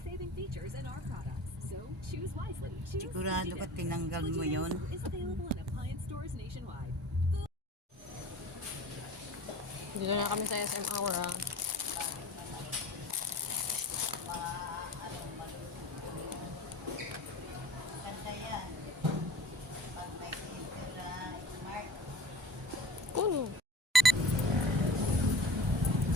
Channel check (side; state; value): both; normal; correlation 0.42